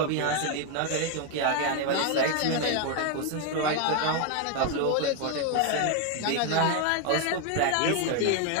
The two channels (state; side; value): different; both; correlation 0.01